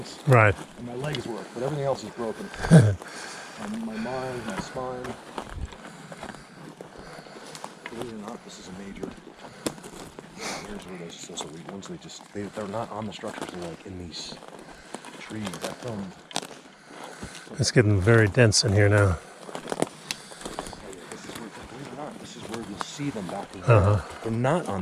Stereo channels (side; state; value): both; identical; correlation 1.00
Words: Right. and my legs work, but everything else is broken. My mind, my spine. Believe it or not, this is a major. Here's where those weak ones. They're not on the structures. They're like in these trees. I filmed. It's getting very dense in here now. This is where, believe it or not, this is where you'll see them back in here. They're not